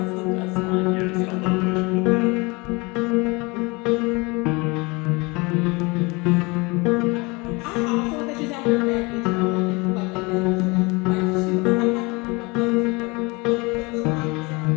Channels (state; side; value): quieter; right; 26.5 dB